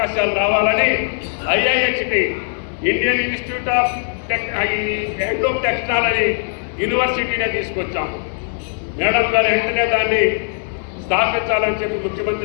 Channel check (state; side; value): silent; right; digital silence